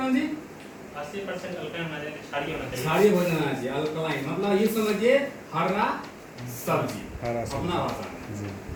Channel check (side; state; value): both; identical; correlation 1.00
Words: जी? 80% अल्कलाइन होना चाहिए, क्षारीय होना चाहिए। क्षारीय भोजन होना चाहिए, अल्कलाइन मतलब ये समझिए हरा सब्जी अपना भाषा में।